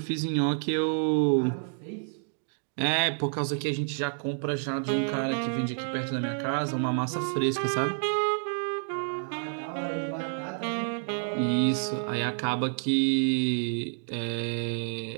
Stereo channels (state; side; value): silent; left; digital silence